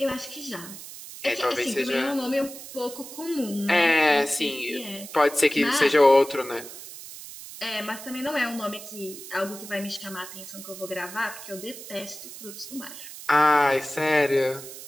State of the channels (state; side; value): noise; right; hiss, 13 dB below the sound